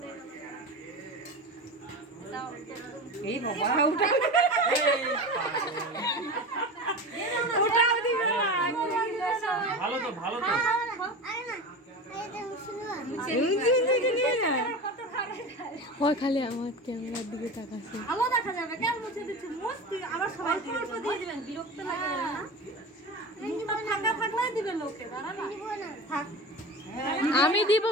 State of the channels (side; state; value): both; normal; correlation 0.28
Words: এই বাবা, ভালো তো, ভালো তো। খালি আমার ক্যামেরার দিকে তাকাচ্ছে। ভালো দেখা যাবে, কেন মুছে দিচ্ছে? মস্তি আবার সবাই অল্প দিয়ে দিবেন, বিরক্ত লাগে না? ফাঁকা থাকলেই দিবেন লোকে, দাঁড়া না থাক। আমি দিব